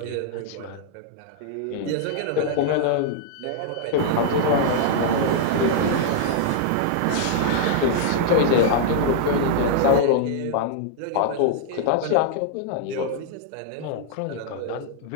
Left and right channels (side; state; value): both; different; correlation -0.01